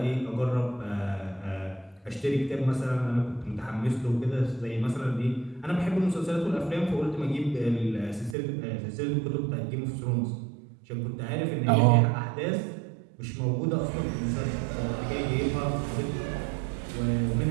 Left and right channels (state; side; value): drops out; left; at 8.3 s